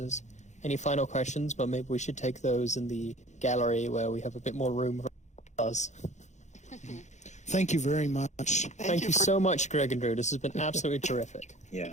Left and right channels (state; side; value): late; right; 0.34 ms